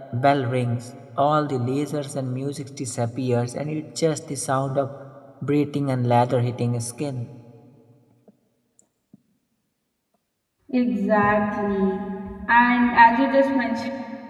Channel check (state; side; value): identical; both; correlation 1.00